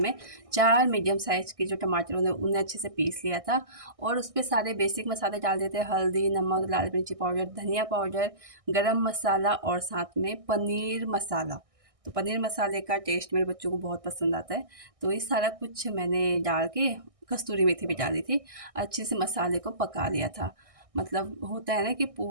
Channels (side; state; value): left; late; 1.6 ms